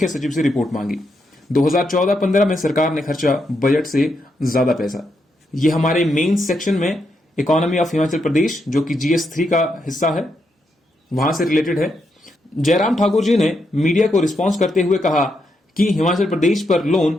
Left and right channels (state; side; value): normal; both; correlation 0.81